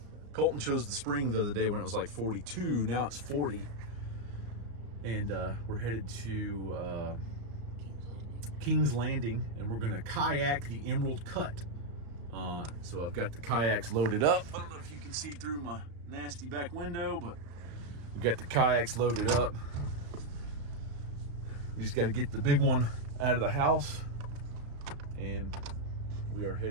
Colton chose the spring the other day when it was like 42. Now it's 40. And we're headed to King's Landing, and we're gonna kayak the Emerald Cut. So I've got the kayaks loaded up. I don't know if you can see through my nasty back window, but we got the kayaks loaded up. We just got to get the big one out of the house, and we are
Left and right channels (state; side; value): late; left; 35 ms